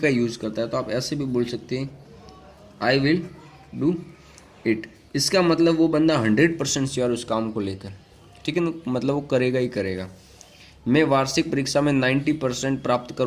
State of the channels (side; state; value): both; identical; correlation 1.00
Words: यूज़ करता है। तो आप ऐसे भी बोल सकते हैं आई विल डू इट। इसका मतलब वो बंदा 100% श्योर उस काम को लेकर, ठीक है ना, मतलब वो करेगा ही करेगा। मैं वार्षिक परीक्षा में 90% प्राप्त